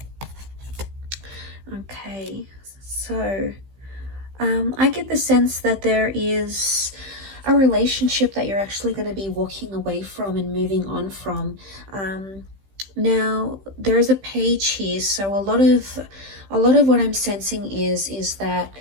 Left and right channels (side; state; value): left; late; 15 ms